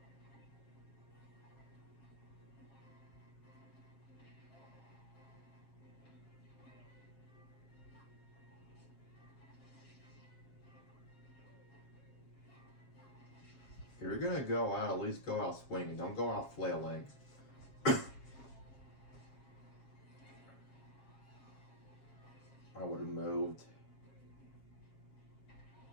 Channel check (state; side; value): late; right; 7.4 ms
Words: If you're gonna go out, at least go out swinging. Don't go out flailing. I would have moved.